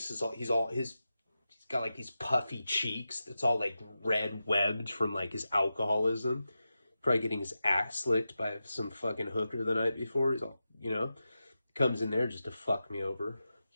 is he's got like these puffy cheeks. It's all like red webbed from like his alcoholism. Probably getting his ass licked by some fucking hooker the night before. He's all, you know, comes in there just to fuck me over.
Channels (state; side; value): inverted; both; correlation -0.92